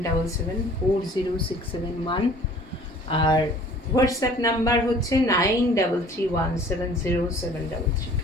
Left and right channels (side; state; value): both; normal; correlation 0.51